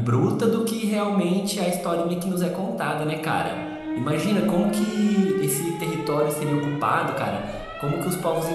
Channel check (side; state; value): both; identical; correlation 1.00